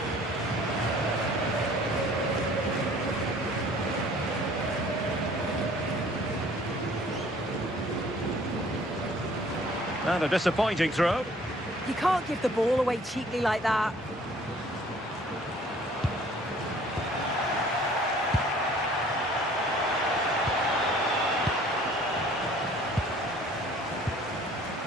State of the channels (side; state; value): both; normal; correlation 0.54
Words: And a disappointing throw. You can't give the ball away cheaply like that.